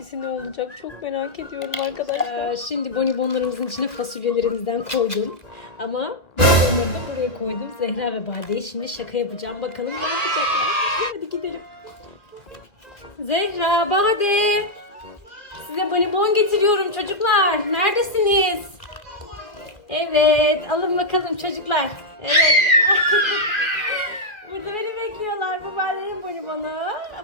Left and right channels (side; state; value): right; late; 1.9 ms